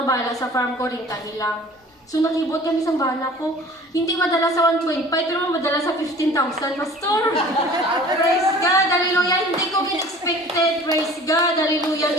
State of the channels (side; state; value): both; normal; correlation 0.46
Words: bala sa farm ko rin lang. So nakibot kami sa bala ko, hindi madala sa 1.5 pero madala sa 15,000, Pastor. Praise God, hallelujah, hindi ko expected, praise God,